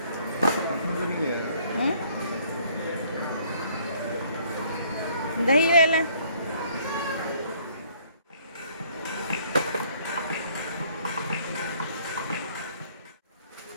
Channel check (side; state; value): both; inverted; correlation -0.61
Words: दही ले लें।